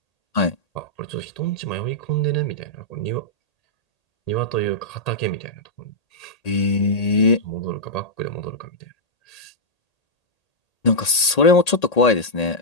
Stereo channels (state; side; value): late; right; 1.8 ms